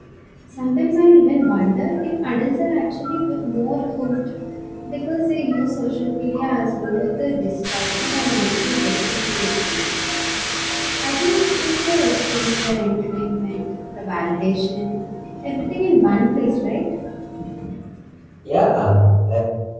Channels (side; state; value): both; identical; correlation 1.00